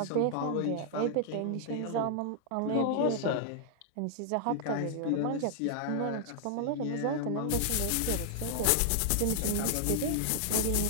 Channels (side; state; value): both; different; correlation -0.01